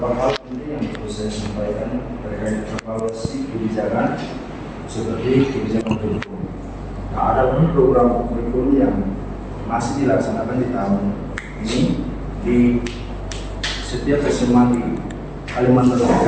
hal penting yang perlu saya sampaikan terkait evaluasi kebijakan seperti kebijakan kurikulum. Nah, ada pun program kurikulum yang masih dilaksanakan di tahun ini di setiap SMA di Kalimantan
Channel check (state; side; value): identical; both; correlation 1.00